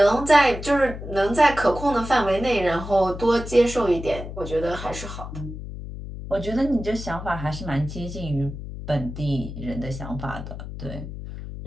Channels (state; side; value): noise; left; hum, 9 dB below the sound